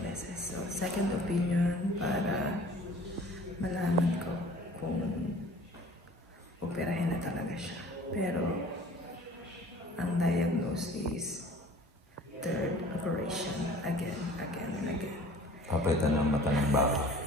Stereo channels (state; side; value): normal; both; correlation 0.48